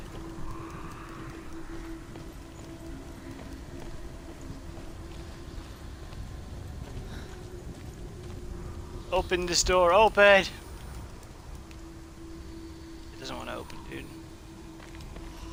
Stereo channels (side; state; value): both; identical; correlation 1.00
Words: Open this door, open! It doesn't want to open, dude.